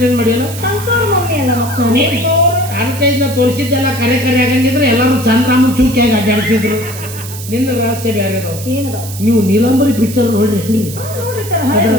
ಮಾಡಿಲ್ಲ. ಅಡ್ವರ್ಟೈಸ್ನ ತೋರಿಸಿದ್ದೆಲ್ಲ ಕರೆ ಆಗಂಗಿದ್ರೆ ಎಲ್ಲರೂ ಚಂದ್ರಾಮನ್ ಚೂಕಿಯಾಗಿ ಅಡ್ಡಾಡ್ತಿದ್ರು. ನಿನ್ನ ರಹಸ್ಯ ಬೇರೆ. ನೀವು ನೀಲಂಬರಿ ಪಿಕ್ಚರ್ ನೋಡ್ರಿ. ಅದ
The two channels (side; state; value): right; noise; hiss, 12 dB below the sound